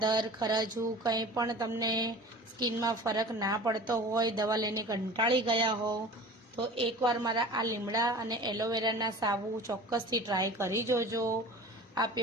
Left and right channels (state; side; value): normal; both; correlation 0.40